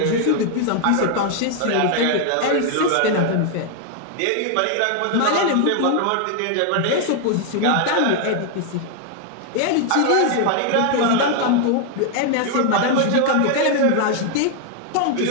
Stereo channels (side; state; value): both; different; correlation 0.00